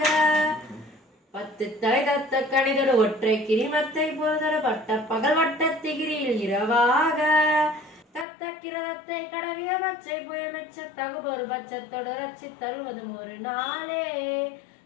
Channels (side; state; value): right; drops out; at 8.2 s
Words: பத்து தலை கத்த கணிதரு ஒற்றை கிரிமத்தை பொறுதரு வட்ட பகல் வட்ட திகிரியில் இரவாக. தத்த கிரதத்தை கடவிய பச்சை புயல் மெச்ச தகுபொரு பட்சத்தோடு ரச்சி தருவதும் ஒரு நாளே.